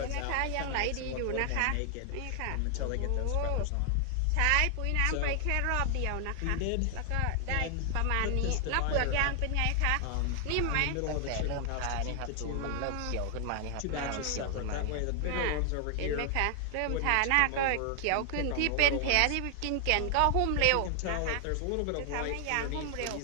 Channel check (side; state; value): both; different; correlation 0.00